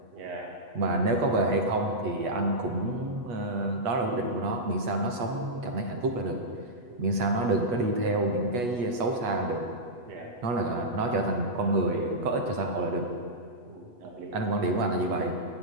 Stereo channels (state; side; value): late; left; 8.6 ms